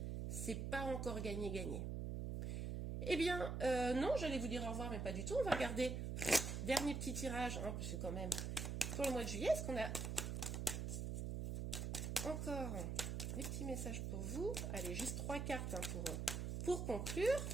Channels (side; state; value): right; noise; hum, 2 dB below the sound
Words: c'est pas encore gagné. Eh bien, non, j'allais vous dire au revoir, mais pas du tout. On va regarder dernier petit tirage, hein, parce que quand même, pour le mois de juillet, est-ce qu'on a encore des petits messages pour vous? Allez, juste 3 cartes hein, pour conclure.